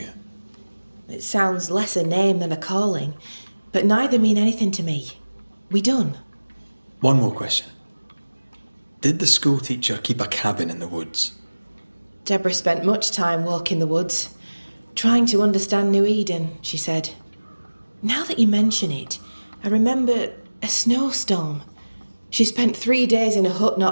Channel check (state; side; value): inverted; both; correlation -1.00